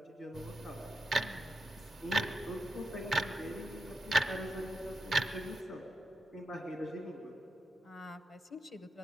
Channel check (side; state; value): both; normal; correlation 0.85